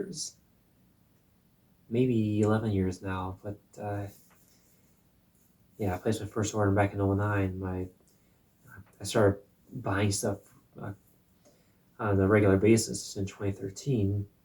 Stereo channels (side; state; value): both; identical; correlation 1.00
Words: maybe 11 years now. But yeah, I placed my first order back in '09. I started buying stuff uh, on a regular basis in 2013,